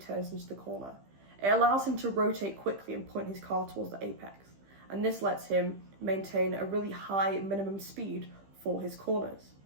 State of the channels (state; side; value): late; left; 15 ms